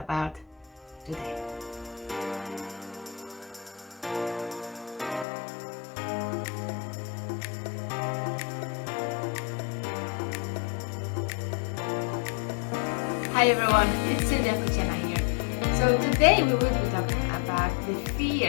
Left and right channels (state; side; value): drops out; right; at 5.2 s